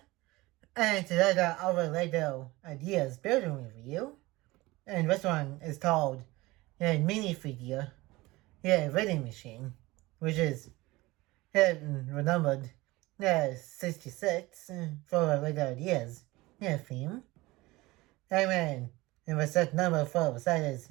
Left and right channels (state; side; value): quieter; left; 20.6 dB